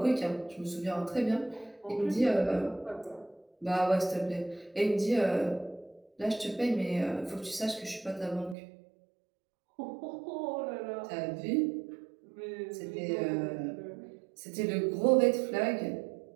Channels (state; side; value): drops out; left; at 8.6 s